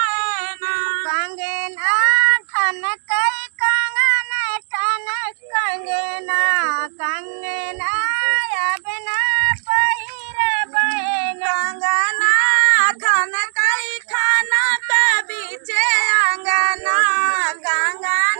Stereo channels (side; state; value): left; silent; digital silence